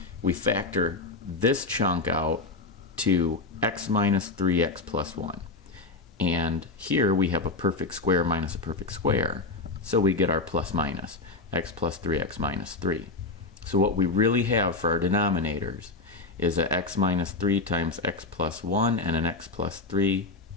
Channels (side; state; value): right; quieter; 3.6 dB